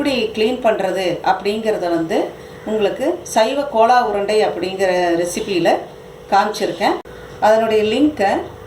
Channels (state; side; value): identical; both; correlation 1.00